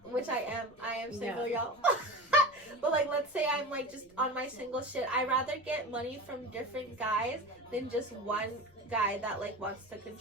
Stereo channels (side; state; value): left; noise; rumble, 29 dB below the sound